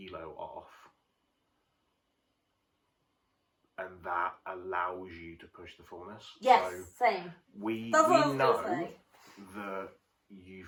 off, and that allows you to push the fullness. Yes, so same. We know that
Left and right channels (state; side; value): identical; both; correlation 1.00